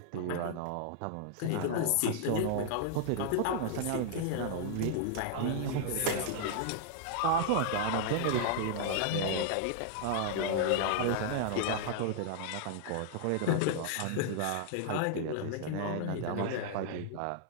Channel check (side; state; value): both; different; correlation 0.00